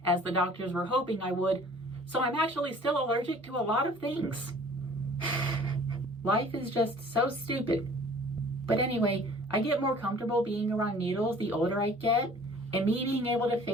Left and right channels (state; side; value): normal; both; correlation 0.50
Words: as the doctors were hoping I would, so I'm actually still allergic to a lot of things. Life is just so stupid. But anyway, I get more comfortable being around needles the older I get, and me being able to